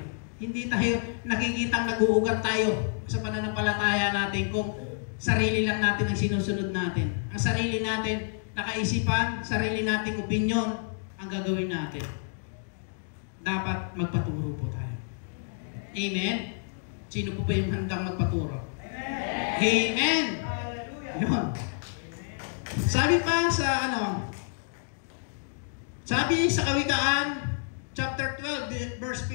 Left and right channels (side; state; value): right; silent; digital silence